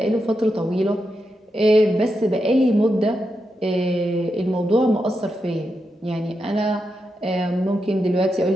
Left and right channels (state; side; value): normal; both; correlation 0.86